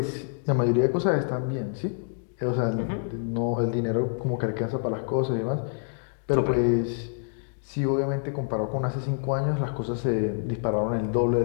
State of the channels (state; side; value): silent; right; digital silence